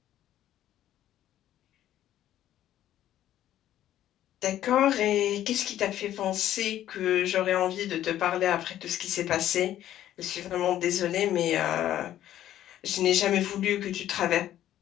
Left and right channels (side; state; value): right; quieter; 12.3 dB